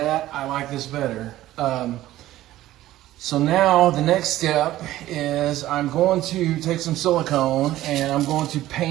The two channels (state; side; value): quieter; left; 14.9 dB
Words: I like this better. So now the next step is I'm going to take some silicone and I'm going to